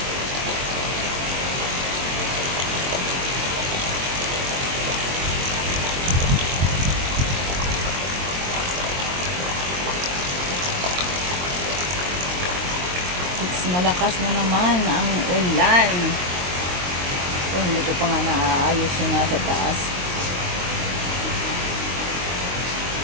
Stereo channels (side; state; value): left; late; 22 ms